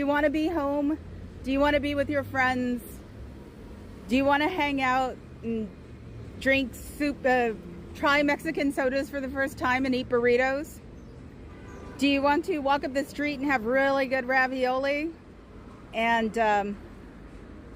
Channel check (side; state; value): both; identical; correlation 1.00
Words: want to be home? Do you want to be with your friends? Do you want to hang out and drink soup, try Mexican sodas for the first time and eat burritos? Do you want to walk up the street and have really good ravioli and